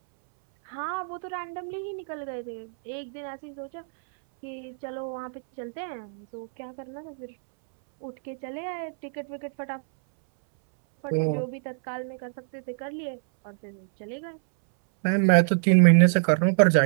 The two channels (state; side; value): silent; left; 61 dB below the other